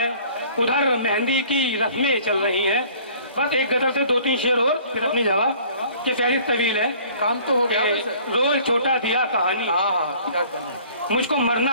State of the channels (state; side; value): inverted; both; correlation -0.52